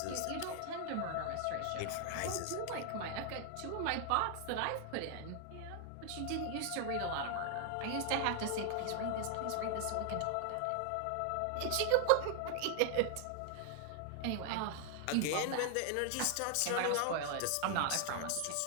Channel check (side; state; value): both; different; correlation 0.00